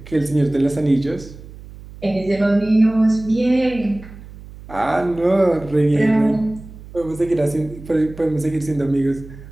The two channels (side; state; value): right; noise; hum, 17 dB below the sound